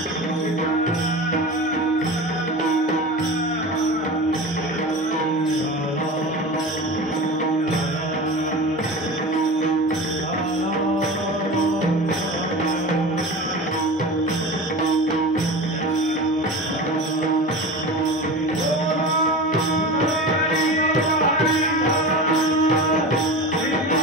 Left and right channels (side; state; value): both; normal; correlation 0.30